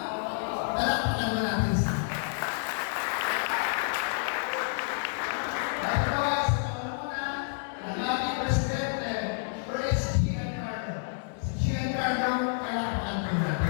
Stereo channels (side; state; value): right; silent; 58 dB below the other